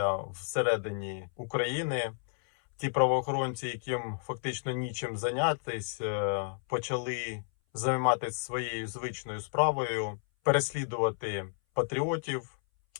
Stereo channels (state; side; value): silent; right; 57 dB below the other